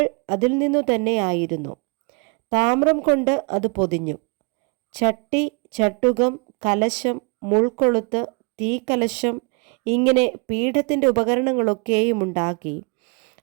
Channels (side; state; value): left; quieter; 33.9 dB